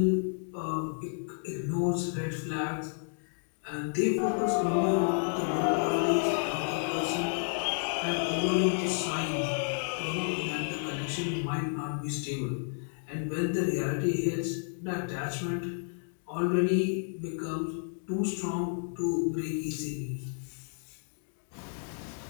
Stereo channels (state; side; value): silent; right; digital silence